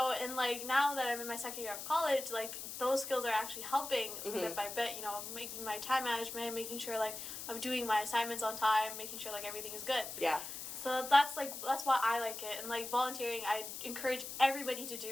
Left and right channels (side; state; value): left; noise; hiss, 8 dB below the sound